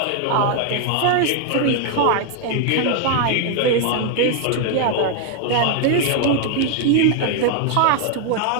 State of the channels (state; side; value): different; both; correlation 0.00